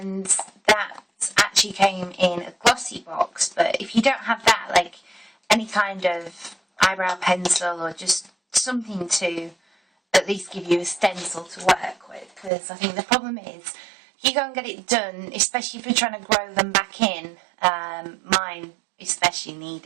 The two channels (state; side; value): drops out; left; at 12.5 s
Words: that actually came in a glossy box, but if you don't have that, like any kind of eyebrow pencil or just something to at least give you a stencil to work with, because I think the problem is if you go and get it done, especially if you're trying to grow them back in, mine especially